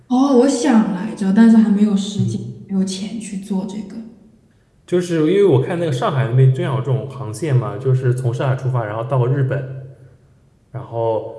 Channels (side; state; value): both; identical; correlation 1.00